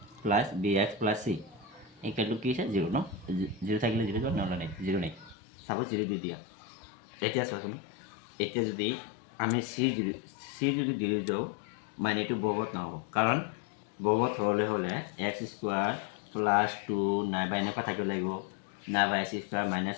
plus bx plus c equal কি হৈছে 0 ন। 0 থাকিলে 0 যোৱা, নহ'লে নাই 0 নাই। চাপ'জ 0 দি দিয়া। এতিয়া চোৱাচোন, এতিয়া যদি আমি চি যদি দি যাওঁ, মানে এইটো বহুপদ নহ'ব, কাৰণ বহুপদ হ'লে এক্স স্কুৱাৰ প্লাছ 2 নাইবা এনেকুৱা থাকিব লাগিব, নাইবা এক্স স্কুৱাৰ মাইনাছ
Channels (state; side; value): drops out; right; at 5.4 s